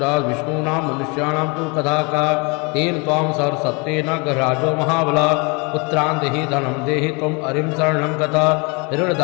विष्णूनां मनुष्याणां तु कथा का तेन त्वां सर्वसत्त्वेन गृहराजो महाबला पुत्रान् देहि धनं देहि त्वम् अरिं शरणं गता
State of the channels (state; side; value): quieter; right; 30.5 dB